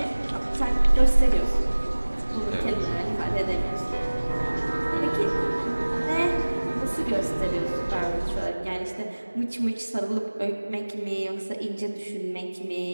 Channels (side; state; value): both; inverted; correlation -1.00